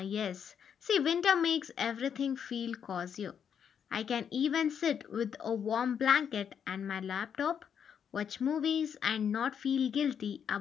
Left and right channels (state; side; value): quieter; right; 7.8 dB